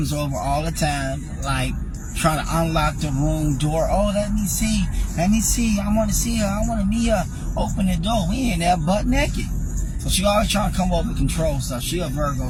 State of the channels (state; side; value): identical; both; correlation 1.00